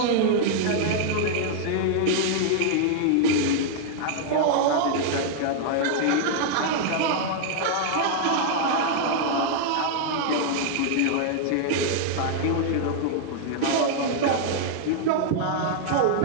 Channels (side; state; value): both; different; correlation -0.01